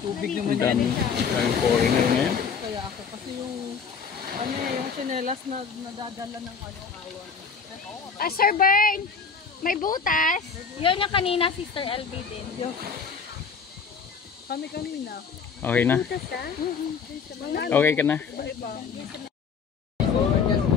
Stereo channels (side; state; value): right; quieter; 5.8 dB